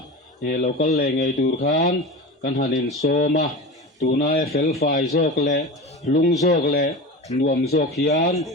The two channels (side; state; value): both; normal; correlation 0.29